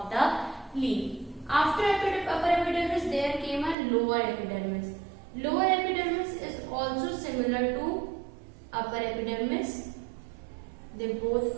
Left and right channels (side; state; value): left; drops out; at 3.8 s